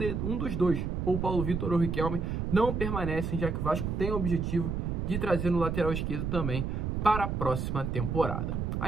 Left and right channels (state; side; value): noise; right; rumble, 1 dB below the sound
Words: dos dois, ou Paulo Vitor ou o Riquelme, não permanecem, já que o Vasco tem o objetivo de trazer no lateral esquerdo também para a próxima temporada.